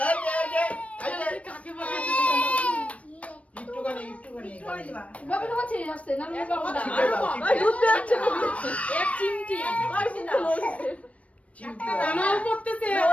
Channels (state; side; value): late; right; 0.065 ms